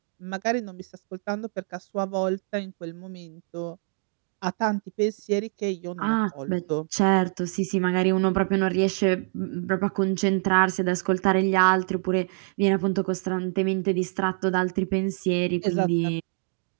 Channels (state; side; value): silent; left; 61 dB below the other